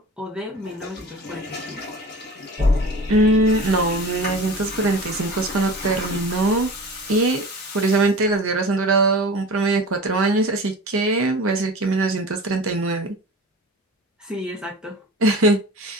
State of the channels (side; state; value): both; normal; correlation 0.37